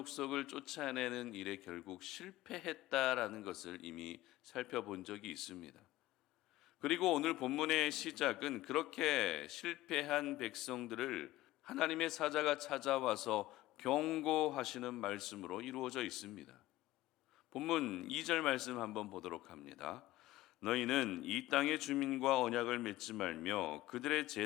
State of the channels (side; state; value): right; quieter; 16.6 dB